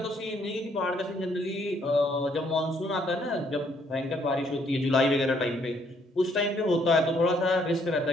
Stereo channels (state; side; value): normal; both; correlation 0.68